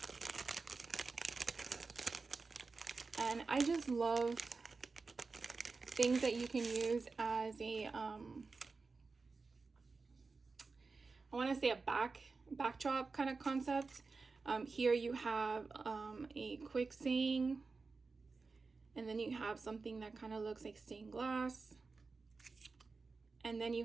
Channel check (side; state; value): left; quieter; 4.2 dB